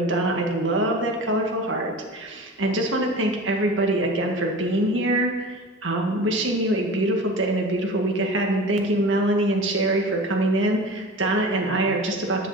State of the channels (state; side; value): normal; both; correlation 0.36